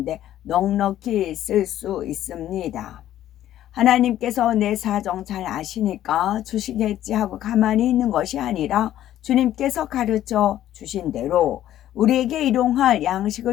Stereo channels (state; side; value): quieter; right; 12.4 dB